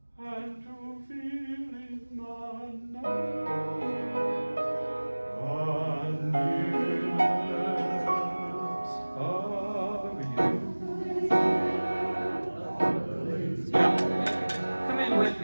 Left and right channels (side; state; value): both; inverted; correlation -1.00